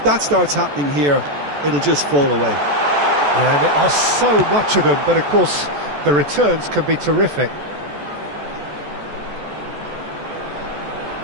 that starts happening here, it'll just fall away. Yeah, and there are so much of them, but, of course, the returns can be terrific.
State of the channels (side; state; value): left; late; 14 ms